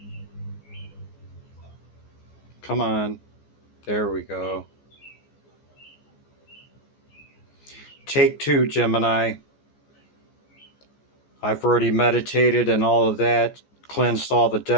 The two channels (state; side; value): late; right; 14 ms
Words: Come on. There we go. Take two, Gemini. I've already meditated and all of that, cleansed all the